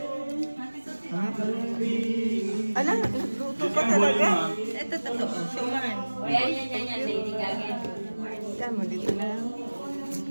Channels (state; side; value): inverted; both; correlation -1.00